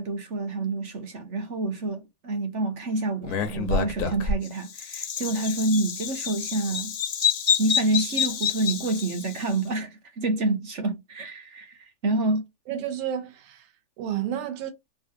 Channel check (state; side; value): late; left; 3.4 ms